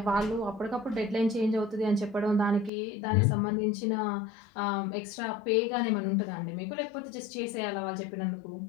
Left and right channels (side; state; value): right; drops out; at 2.7 s